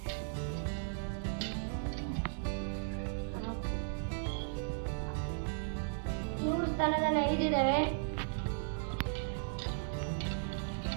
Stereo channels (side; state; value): left; silent; digital silence